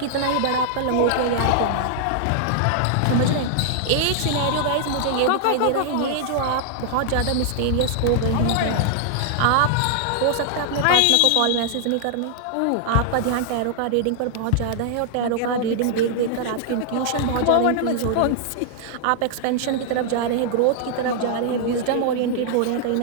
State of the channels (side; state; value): both; different; correlation -0.01